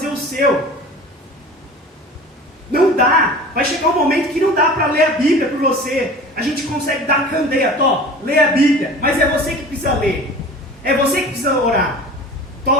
o seu. Não dá. Vai chegar um momento que não dá para ler a Bíblia por você. A gente consegue dar candeia, lê a Bíblia, mas é você que precisa ler. É você que precisa orar.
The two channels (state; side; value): normal; both; correlation 0.39